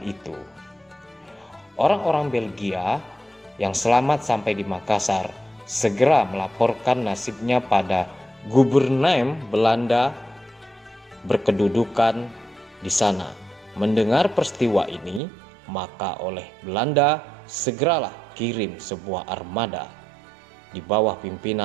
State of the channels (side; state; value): left; drops out; at 15.2 s